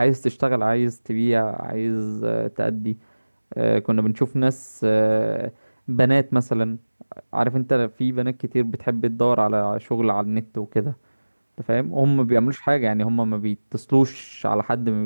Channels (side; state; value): both; inverted; correlation -1.00